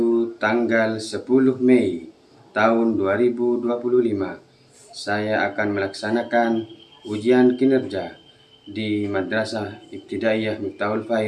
tanggal 10 Mei tahun 2025, saya akan melaksanakan ujian kinerja di Madrasah Ibtidaiyah Miftahul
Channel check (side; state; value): both; identical; correlation 1.00